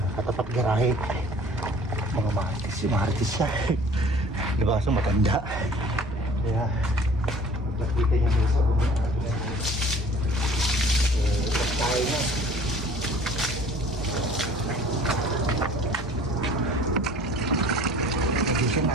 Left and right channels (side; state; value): both; normal; correlation 0.49